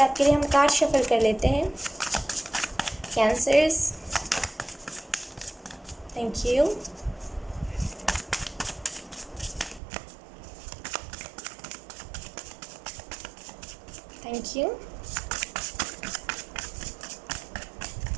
आपके लिए हम कार्ड शफल कर लेते हैं cancers. Thank you. Thank you.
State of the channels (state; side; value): drops out; left; at 9.8 s